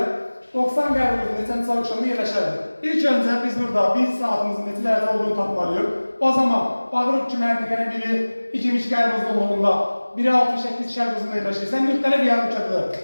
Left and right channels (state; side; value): inverted; both; correlation -1.00